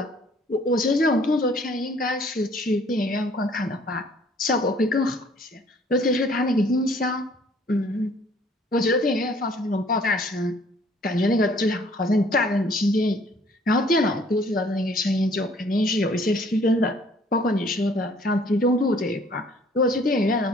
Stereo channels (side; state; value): both; normal; correlation 0.58